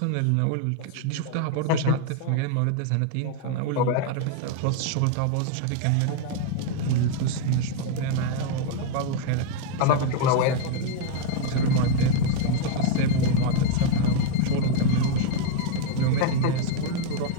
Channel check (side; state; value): both; different; correlation 0.00